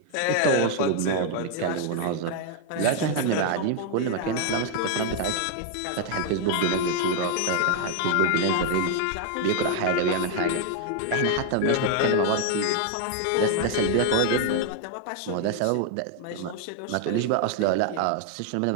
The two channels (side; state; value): both; different; correlation 0.00